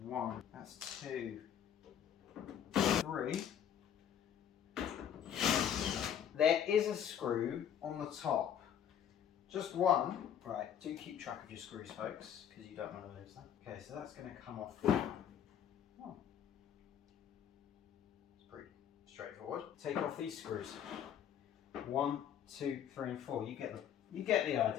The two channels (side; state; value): right; quieter; 9.2 dB